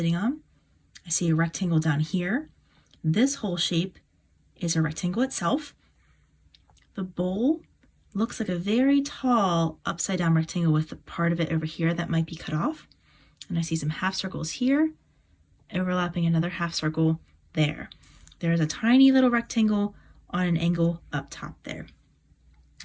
on. I see a rectangle down here. This whole shape is a rectangle itself. The bowl looks like a very tall upside down rectangle with the part of it over here that might be cut off. And I see some half circles here, overlapping another half circle there. There's a tiny little rectangle on an angle up top there.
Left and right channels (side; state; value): both; identical; correlation 1.00